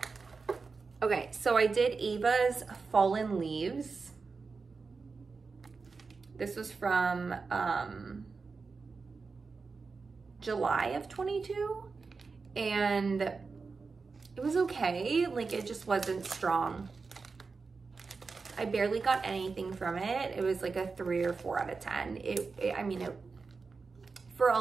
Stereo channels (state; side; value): quieter; left; 4.5 dB